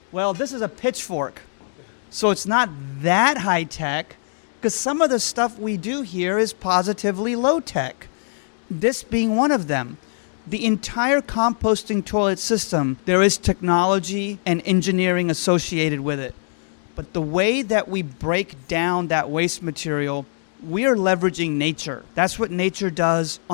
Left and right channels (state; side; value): silent; right; digital silence